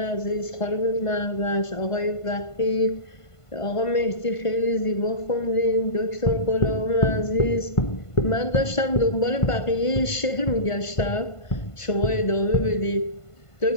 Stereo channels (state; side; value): late; right; 1.5 ms